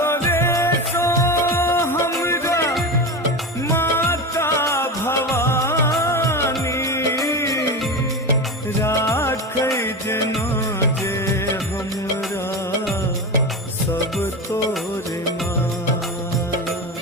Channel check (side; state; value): both; normal; correlation 0.22